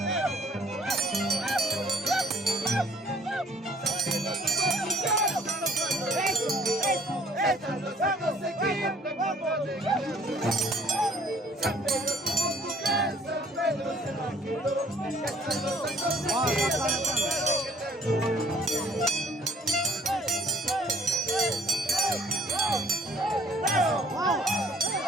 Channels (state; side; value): normal; both; correlation 0.56